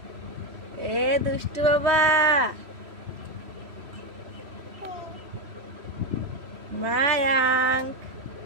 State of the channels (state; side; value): late; left; 3.1 ms